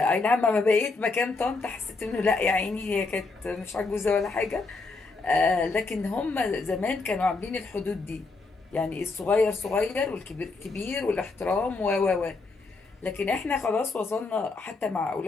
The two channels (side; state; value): right; quieter; 3.8 dB